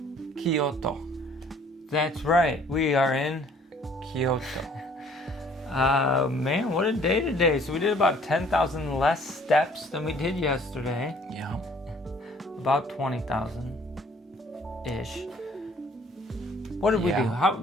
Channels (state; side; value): normal; both; correlation 0.57